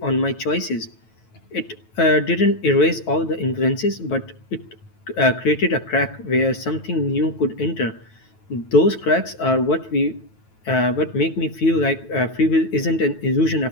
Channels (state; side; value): late; right; 9.2 ms